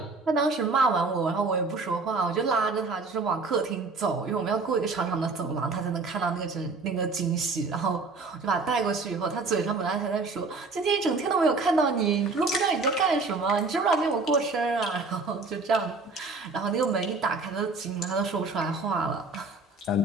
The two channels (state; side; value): quieter; left; 3.8 dB